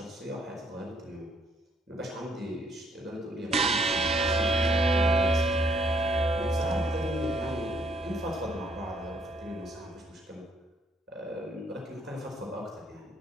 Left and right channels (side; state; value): both; normal; correlation 0.68